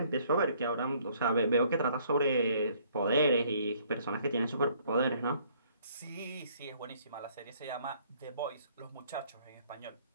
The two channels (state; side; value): inverted; both; correlation -0.62